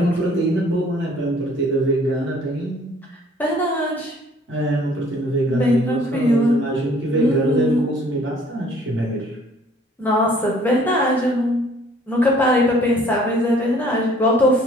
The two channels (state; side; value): normal; both; correlation 0.57